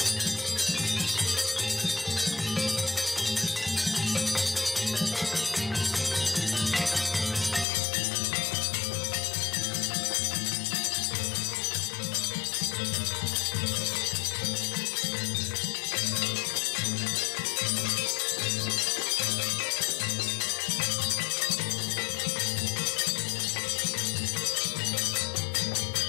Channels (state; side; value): drops out; right; at 7.7 s